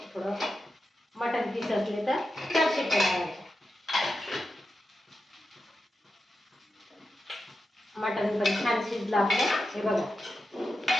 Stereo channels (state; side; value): normal; both; correlation 0.90